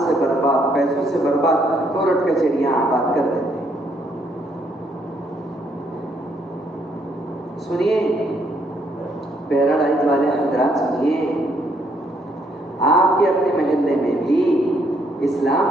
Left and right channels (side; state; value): both; normal; correlation 0.71